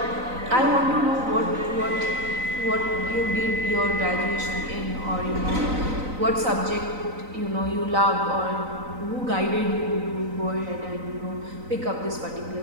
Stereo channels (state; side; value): late; left; 3.9 ms